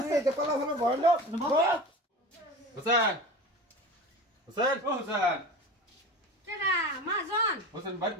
এই যে কলা ফলা ভরলো হোসেন হোসেন ও হোসেন কেডা মাজন হোসেন বাড়ি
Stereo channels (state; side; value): normal; both; correlation 0.33